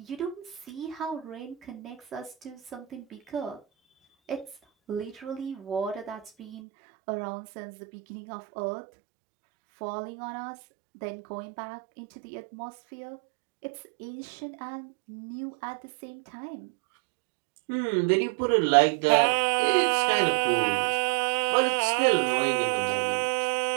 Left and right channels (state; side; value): drops out; left; at 6.5 s